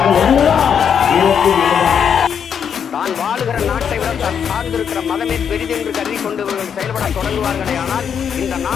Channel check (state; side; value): quieter; right; 7.7 dB